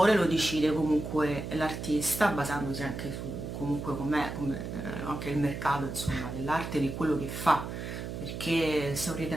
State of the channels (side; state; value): right; noise; hum, 6 dB below the sound